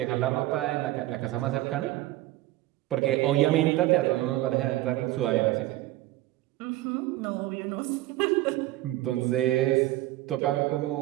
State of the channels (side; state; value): left; quieter; 16.4 dB